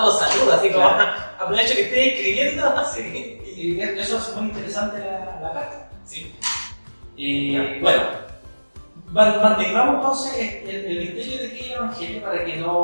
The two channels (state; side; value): inverted; both; correlation -1.00